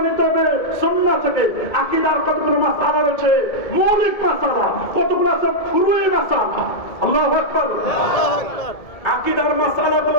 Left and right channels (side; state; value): right; late; 2.3 ms